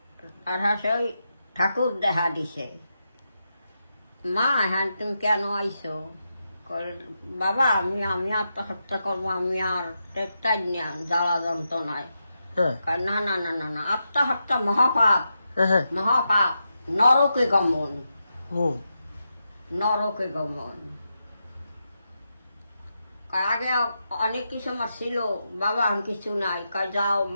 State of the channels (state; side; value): inverted; both; correlation -0.86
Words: আর ওই ঠাকুর দেখা দিছে, মা হ্যাঁ তুমি কেন আইসো? বাবা আমি আমি আত্মহত্যা করবো, আমি আর টেকটাই না জ্বালা যন্ত্রণায়। না না না না না, আত্মহত্যা মহাপাপ, মহাপাপ, নরকে গমন, নরকে গমন। আগে অনেক কিছু আমার ছিল, বাবা আমি কিছু নাই, যাও